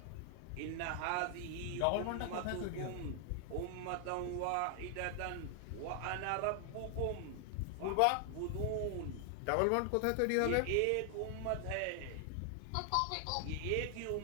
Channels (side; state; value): both; different; correlation 0.00